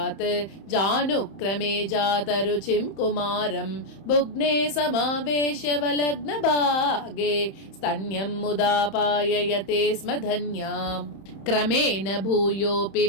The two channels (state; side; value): late; right; 31 ms